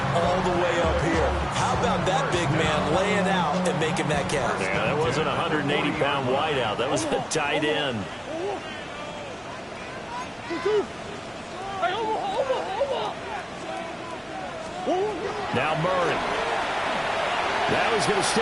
all the way up here. How about that big man laying out and making that catch? Yeah, that wasn't a 180-pound wideout. That was a tight end. Now Murray. Now he's going to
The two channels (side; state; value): both; identical; correlation 1.00